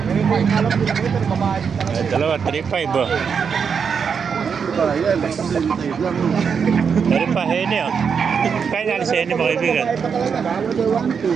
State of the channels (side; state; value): left; quieter; 6.4 dB